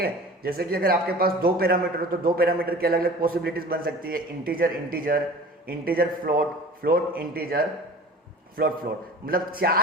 जैसे कि अगर आपके पास दो पैरामीटर हो तो दो पैरामीटर की अलग अलग पॉसिबिलिटीज बन सकती है, integer integer, integer float, float integer, float float, मतलब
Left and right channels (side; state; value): both; normal; correlation 0.41